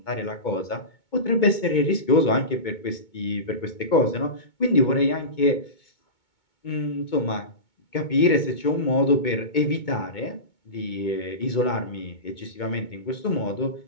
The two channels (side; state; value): right; late; 2.2 ms